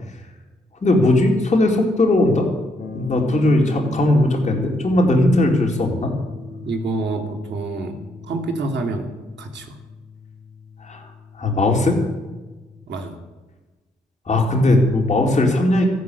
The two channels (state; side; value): normal; both; correlation 0.73